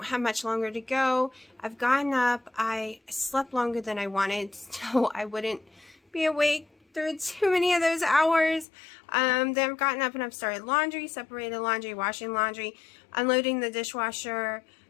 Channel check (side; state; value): right; drops out; at 8.7 s